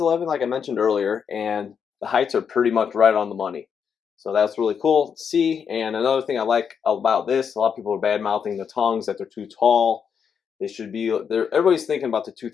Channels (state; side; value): quieter; right; 7.0 dB